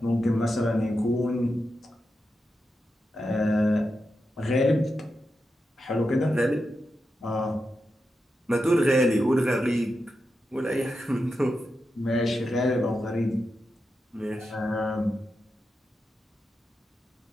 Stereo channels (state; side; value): normal; both; correlation 0.88